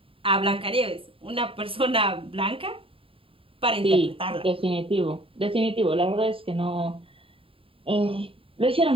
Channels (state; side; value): late; left; 0.27 ms